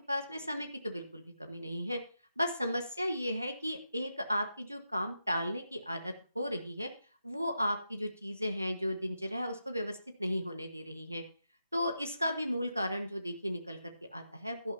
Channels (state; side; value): inverted; both; correlation -0.86